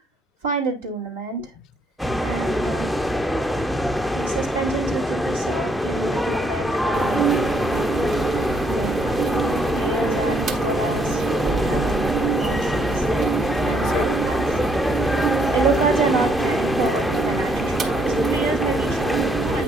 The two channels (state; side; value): normal; both; correlation 0.70